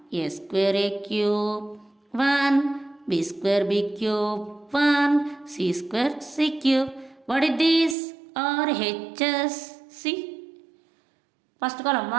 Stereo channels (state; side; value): drops out; left; at 8.0 s